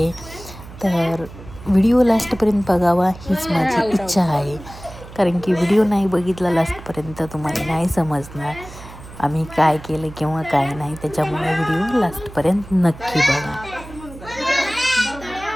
तर व्हिडिओ लास्टपर्यंत बघावा हीच माझी इच्छा आहे, कारण की व्हिडिओ नाही बघितला लास्टपर्यंत तुम्हाला नाही समजणार आम्ही काय केलं किंवा काय नाही. त्याच्यामुळे व्हिडिओ लास्टपर्यंत नक्की बघा.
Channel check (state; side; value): noise; right; hum, 16 dB below the sound